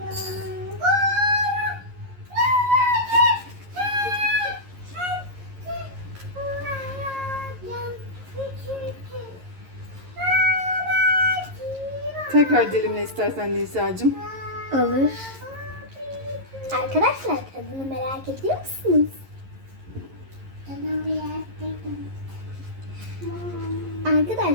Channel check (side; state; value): left; late; 11 ms